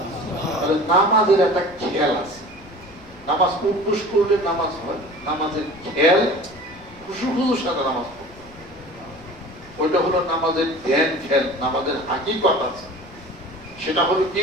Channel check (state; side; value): noise; left; rumble, 22 dB below the sound